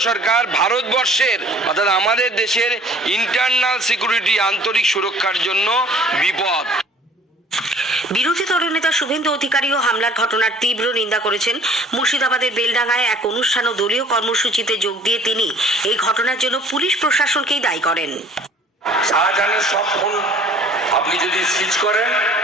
সরকার ভারতবর্ষের অর্থাৎ আমাদের দেশের ইন্টারনাল সিকিউরিটি আন্তরিক সুরক্ষার জন্য বিপদ। বিরোধী দলনেতা শুভেন্দু অধিকারীও হামলার ঘটনার তীব্র নিন্দা করেছেন। মুর্শিদাবাদের বেলডাঙ্গায় এক অনুষ্ঠান ও দলীয় কর্মসূচিতে যোগ দিয়ে তিনি এই ঘটনার জন্য পুলিশ প্রশাসনকেই দায়ী করেন। শাহজাহানের সব ফোন আপনি যদি সিজ করেন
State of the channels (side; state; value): both; normal; correlation 0.52